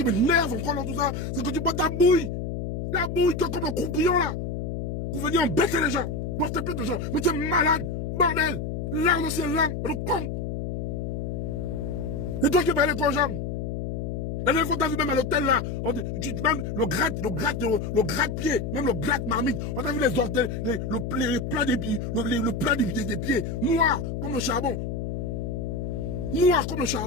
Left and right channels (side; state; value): left; noise; hum, 4 dB below the sound